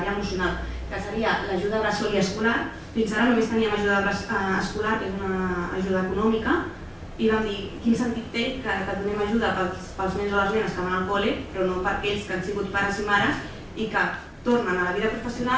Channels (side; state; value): both; identical; correlation 1.00